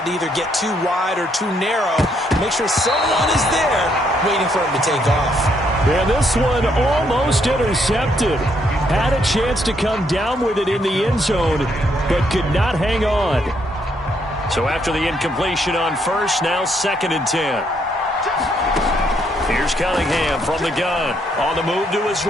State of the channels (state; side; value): normal; both; correlation 0.73